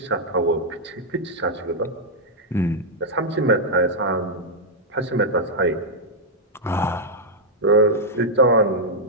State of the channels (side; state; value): both; normal; correlation -0.04